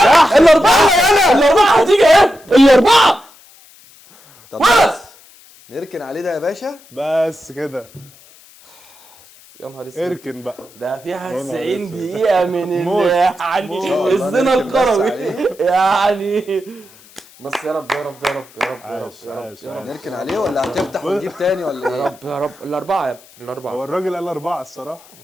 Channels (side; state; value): left; noise; hiss, 25 dB below the sound